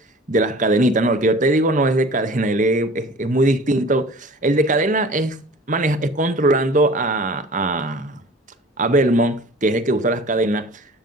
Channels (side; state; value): both; normal; correlation 0.44